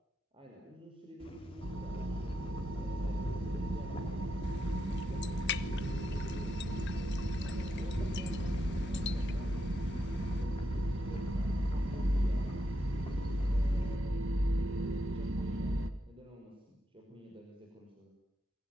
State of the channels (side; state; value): both; normal; correlation 0.83